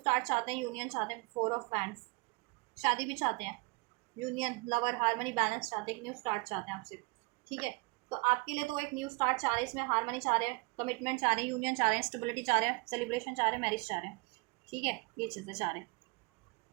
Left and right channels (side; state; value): left; quieter; 26.7 dB